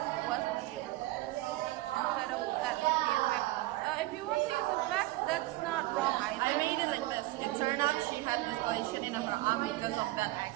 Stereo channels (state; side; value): quieter; left; 18.1 dB